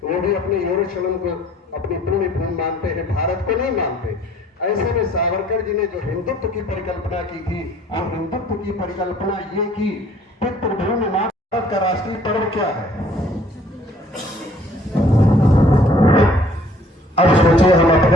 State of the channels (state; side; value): normal; both; correlation 0.57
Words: वो भी अपने यरूशलेम को अपनी पुण्य भूमि मानते हैं, भारत को नहीं मानते। ऐसे में सावरकर जी ने जो हिंदुत्व की परिकल्पना की थी, और हिंदुत्व की परिकल्पना ये की पितृभूमि। भारत का राष्ट्रीय पर्व क्या है? अब सोचिए हम